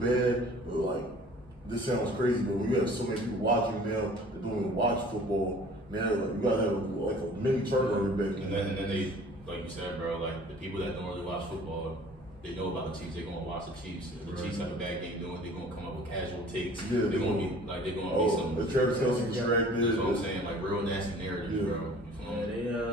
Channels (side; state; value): both; normal; correlation 0.49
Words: but like, this sounds crazy, but when you have so many people watching now, that don't even watch football, now like, you gotta have like a mini turnover back. And then they, like you said, bro, like the people that don't really watch football, they know about the Chiefs. They're gonna watch the Chiefs. If the Chiefs have a bad game doing, they're gonna come up with casual takes. Yeah, they're gonna be some. The Travis Kelce distracted. That's what I'm saying, like real nasty narratives, Yeah. bro. You